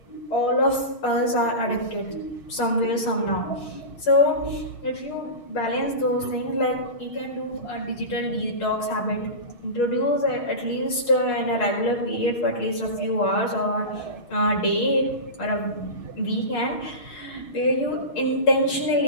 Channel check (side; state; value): right; late; 6.4 ms